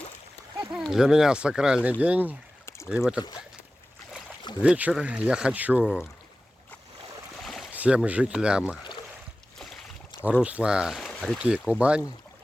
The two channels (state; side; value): normal; both; correlation 0.96